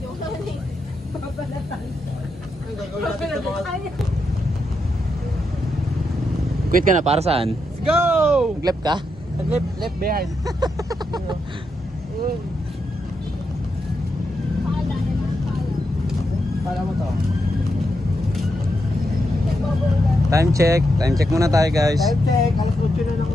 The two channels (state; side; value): normal; both; correlation 0.84